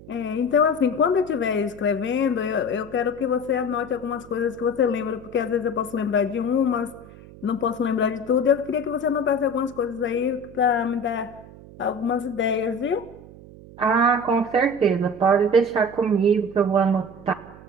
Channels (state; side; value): noise; right; hum, 19 dB below the sound